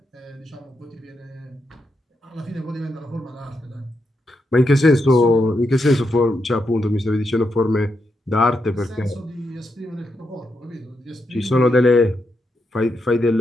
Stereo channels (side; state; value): both; normal; correlation 0.83